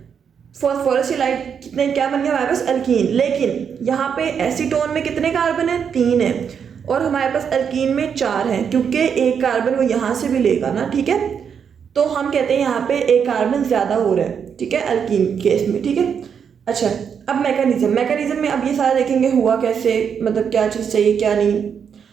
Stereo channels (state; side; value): quieter; left; 7.2 dB